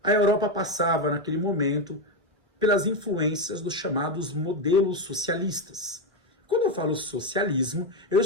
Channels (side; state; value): both; normal; correlation 0.09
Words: a Europa passava, naquele momento, pelas influências dos chamados modelos socialistas. Quando eu falo socialismo, eu